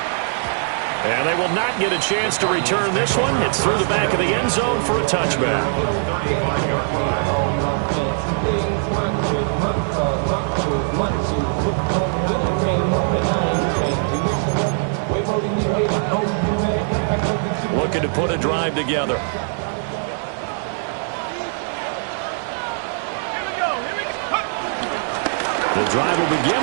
And they will not get a chance to return this one. It's through the back of the end zone for a touchback. Looking to put a drive together. The drive will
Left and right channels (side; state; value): left; silent; 65 dB below the other